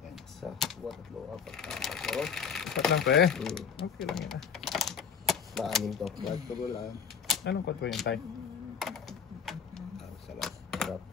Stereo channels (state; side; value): quieter; right; 6.9 dB